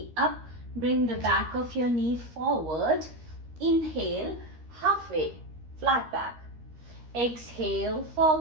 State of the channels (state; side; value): late; left; 13 ms